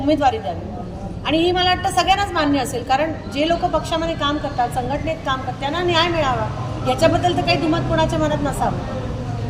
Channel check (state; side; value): identical; both; correlation 1.00